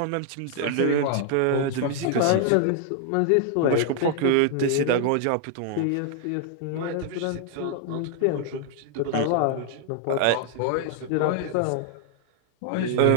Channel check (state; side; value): different; both; correlation -0.01